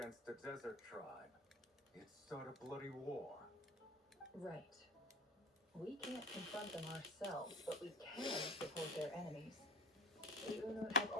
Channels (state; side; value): normal; both; correlation 0.32